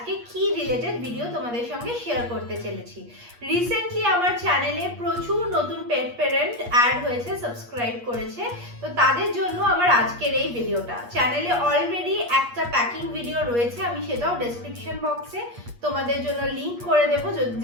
কি রিলেটেড ভিডিও তোমাদের সঙ্গে শেয়ার করতে চলেছি। রিসেন্টলি আমার চ্যানেলে প্রচুর নতুন পেট প্যারেন্ট অ্যাড হয়েছে, সাবস্ক্রাইব করেছে, তো তাদের জন্য আমার আজকের এই ভিডিওটা। চ্যানেলে অলরেডি একটা প্যাকিং ভিডিও রয়েছে, আমি সেটাও ডেসক্রিপশন বক্সে তোমাদের জন্য লিংক করে দেবো,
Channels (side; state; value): left; late; 8.4 ms